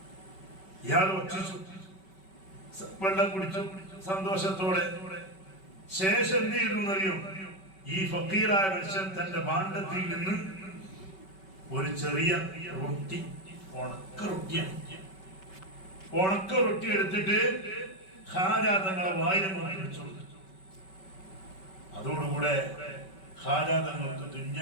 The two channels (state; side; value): late; right; 5.3 ms